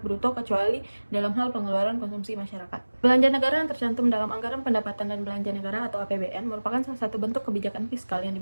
bruto kecuali dalam hal pengeluaran konsumsi masyarakat. Belanja negara yang tercantum dalam Anggaran Pendapatan dan Belanja Negara atau APBN merupakan salah satu bentuk kebijakan fiskal yang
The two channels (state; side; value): inverted; both; correlation -1.00